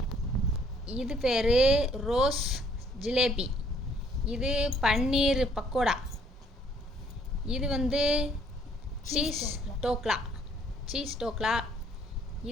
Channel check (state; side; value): normal; both; correlation 0.63